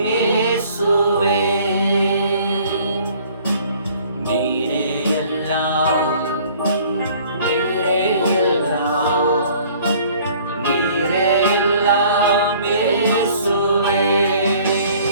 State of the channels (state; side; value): inverted; both; correlation -0.54